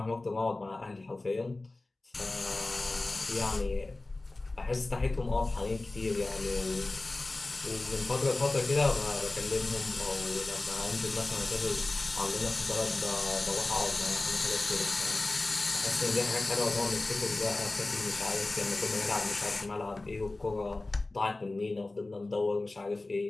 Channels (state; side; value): quieter; right; 3.1 dB